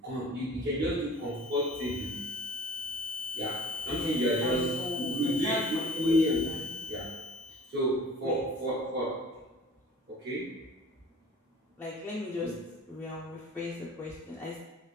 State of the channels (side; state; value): both; normal; correlation 0.46